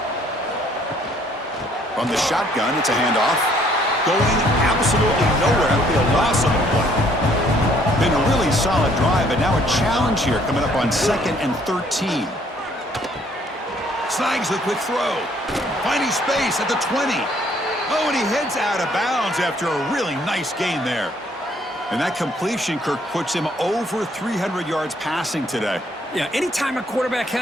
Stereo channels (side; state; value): both; normal; correlation 0.63